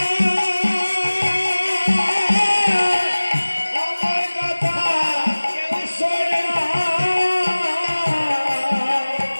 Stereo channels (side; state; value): both; inverted; correlation -1.00